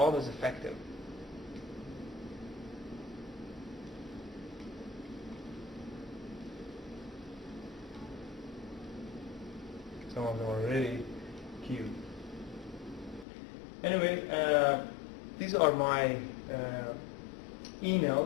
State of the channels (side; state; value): right; drops out; at 13.2 s